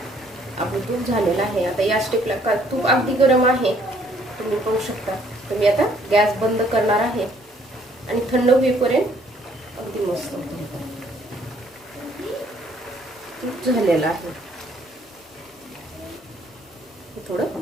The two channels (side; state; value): both; normal; correlation 0.63